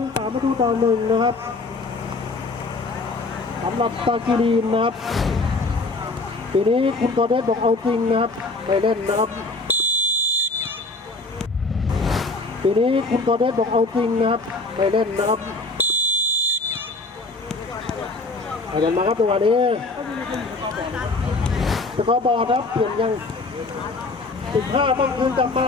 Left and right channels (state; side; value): quieter; right; 3.3 dB